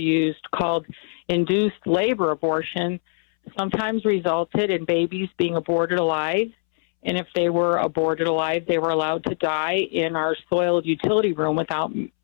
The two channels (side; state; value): right; silent; 63 dB below the other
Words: called induced labor abortion, sometimes resulted in babies being aborted alive And if they were aborted alive, they were allowed to die in our soiled utility room without